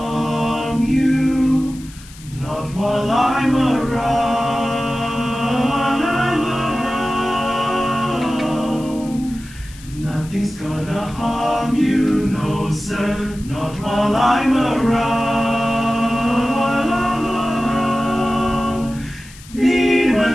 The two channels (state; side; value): noise; left; hiss, 20 dB below the sound